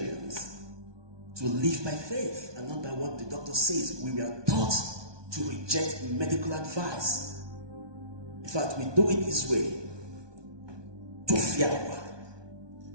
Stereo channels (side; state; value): left; late; 1.2 ms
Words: to live by faith and not by what the doctor says. We were taught to reject medical advice. In fact, we do it this way. To fear,